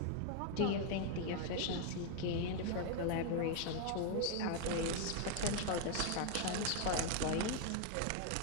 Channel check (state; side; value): different; both; correlation 0.00